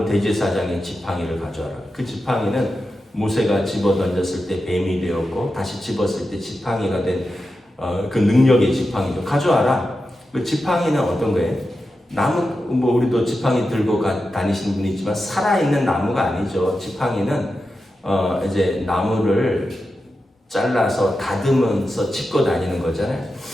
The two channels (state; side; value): normal; both; correlation 0.90